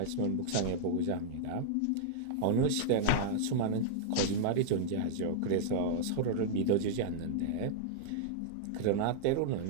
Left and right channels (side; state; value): both; different; correlation -0.02